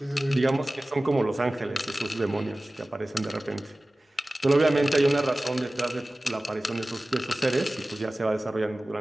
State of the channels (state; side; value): normal; both; correlation 0.97